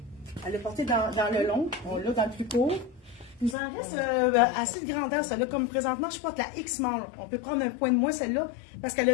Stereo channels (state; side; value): drops out; right; at 3.6 s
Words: Elle l'a portée dans le long. On l'a dans le plus court. Il nous en reste assez de grandeur, celle-là. Comme présentement, je porte la X-Small. On peut prendre un point de moins, celle-là, parce qu'elle a